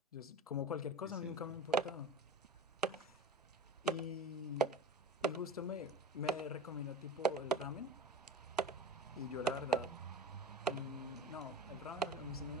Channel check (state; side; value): normal; both; correlation 0.34